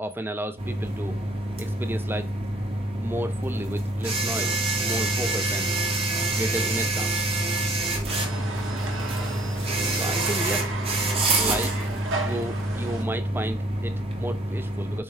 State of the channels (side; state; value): both; normal; correlation 0.59